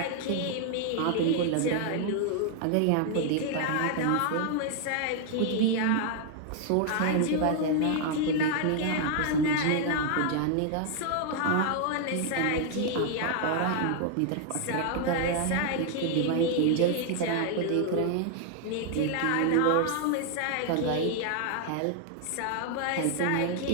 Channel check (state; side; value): different; both; correlation 0.00